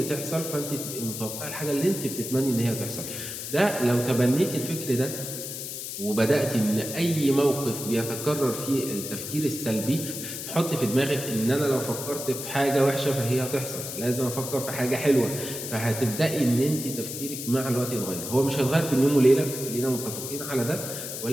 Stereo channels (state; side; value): noise; left; hiss, 7 dB below the sound